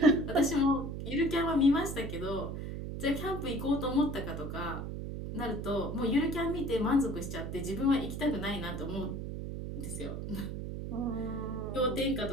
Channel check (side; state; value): right; noise; hum, 5 dB below the sound